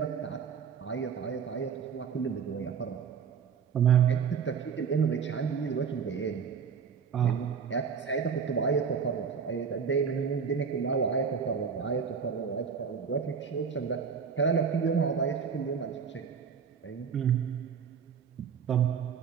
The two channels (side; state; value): left; quieter; 6.5 dB